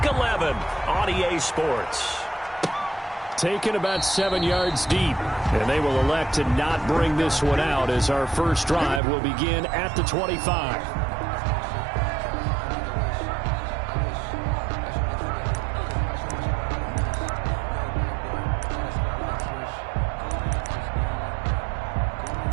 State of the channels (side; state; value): left; drops out; at 9.0 s